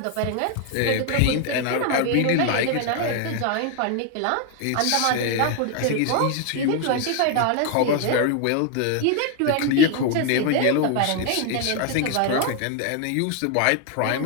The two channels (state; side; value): different; both; correlation 0.00